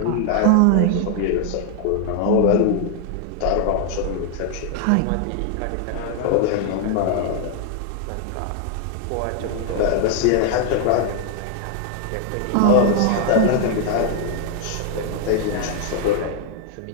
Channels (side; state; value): both; different; correlation 0.00